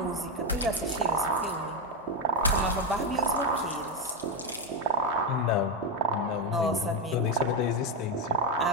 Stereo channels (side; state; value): both; normal; correlation 0.09